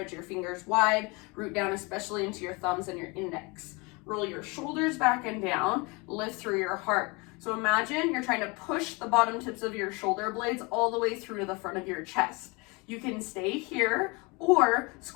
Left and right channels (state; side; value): quieter; right; 27.6 dB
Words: your fingers wide, root down especially into your thumbs and your index. Roll your shoulders back and down, lift through your heart. So imagine you're trying to push the bottom tips of your shoulder blades all the way through to the front of your chest. You can stay here or